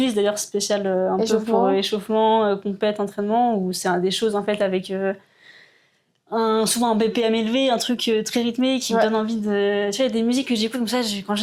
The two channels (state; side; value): identical; both; correlation 1.00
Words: d'ailleurs spéciale un peu pour échauffement, compète, entraînement, où c'est des choses en fait avec souvent un BPM élevé, un truc très rythmé qui me donne envie de... Tu vois, il y a des musiques que j'écoute comme ça, quand